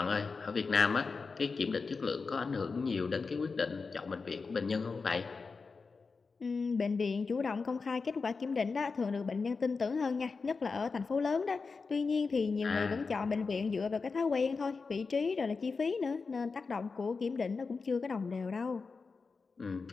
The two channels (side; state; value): right; quieter; 4.6 dB